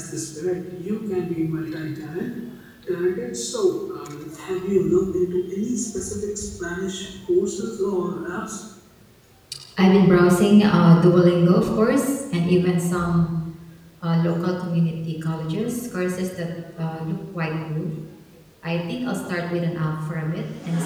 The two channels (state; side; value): identical; both; correlation 1.00